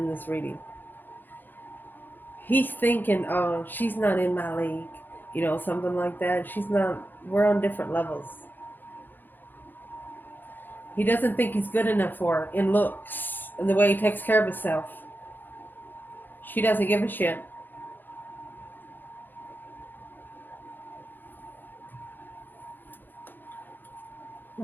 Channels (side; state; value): right; late; 0.090 ms